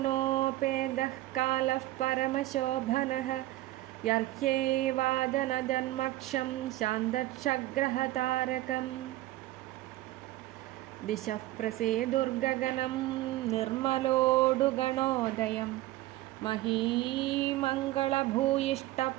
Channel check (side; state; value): left; quieter; 16.7 dB